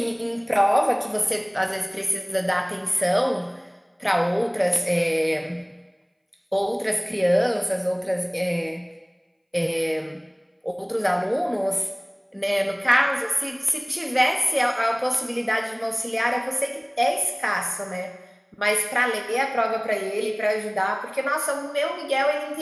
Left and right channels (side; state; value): both; identical; correlation 1.00